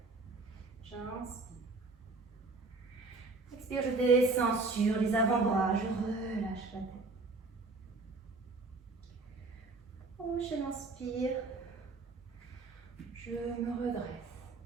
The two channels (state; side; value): quieter; left; 3.6 dB